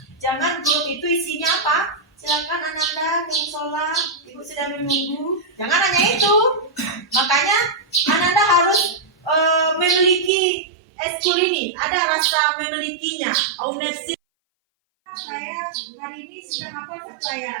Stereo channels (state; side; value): drops out; left; at 10.3 s